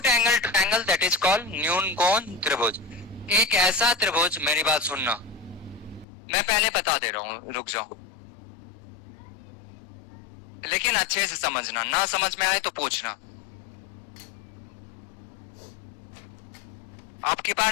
angle triangle that is called न्यून कोण त्रिभुज। एक ऐसा त्रिभुज, मेरी बात सुनना, मैं पहले बता दे रहा हूं, रुक जाओ, लेकिन अच्छे से समझना, ना समझ में आए तो पूछना। आपके पास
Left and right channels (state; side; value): drops out; right; at 6.1 s